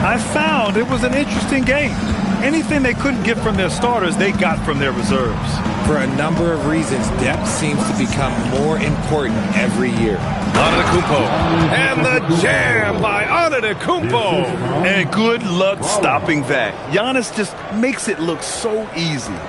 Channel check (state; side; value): identical; both; correlation 1.00